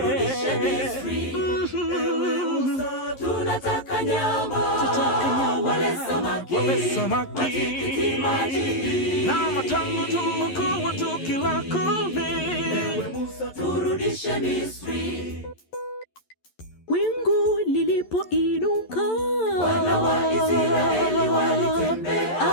Misri. Ewe Musa, tunataka nyama, wale samaki, matikiti maji, na matango tulokuwa tukila kule. Ewe Musa, turudishe Misri. Wingu lilipoinuka, wana wa Israeli walitembea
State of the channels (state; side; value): late; right; 11 ms